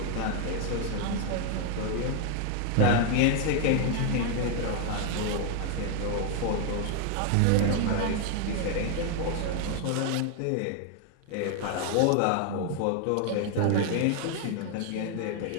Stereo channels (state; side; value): different; both; correlation 0.00